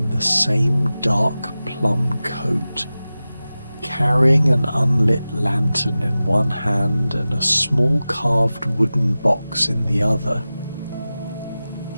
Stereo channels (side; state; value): both; inverted; correlation -0.96